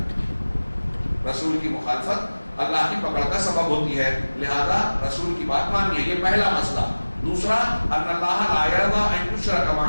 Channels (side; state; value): both; inverted; correlation -1.00